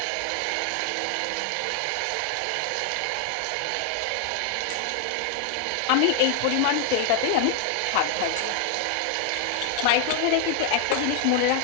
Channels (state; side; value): different; both; correlation 0.00